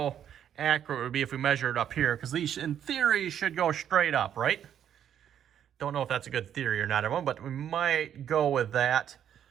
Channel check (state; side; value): quieter; left; 9.6 dB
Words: accurate it would be if we measure it up here, because these in theory should go straight up, right? Don't know if that's a good theory or not, everyone, but we might go with that.